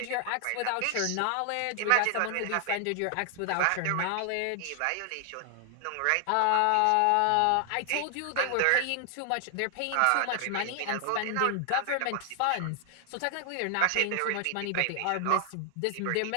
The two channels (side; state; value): both; different; correlation 0.00